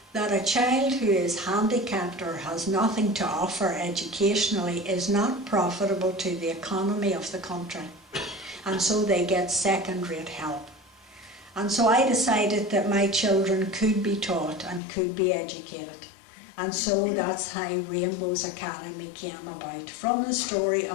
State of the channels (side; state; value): right; drops out; at 14.8 s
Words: that a child who is handicapped or has nothing to offer educationally is not profitable to the economy of the country. And so they get second-rate help. And so I decided that my children could be taught and could be educated. And so that's how Rainbows Academy came about, from the story